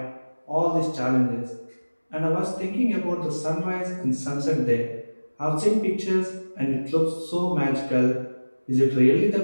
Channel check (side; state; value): both; inverted; correlation -1.00